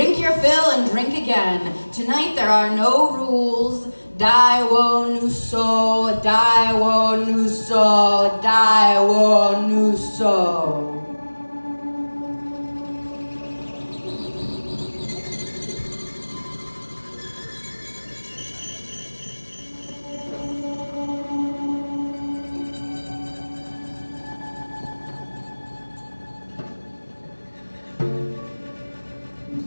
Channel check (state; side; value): inverted; both; correlation -1.00